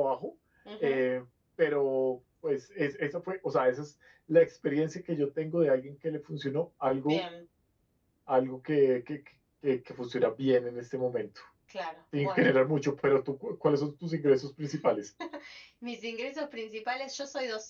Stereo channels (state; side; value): identical; both; correlation 1.00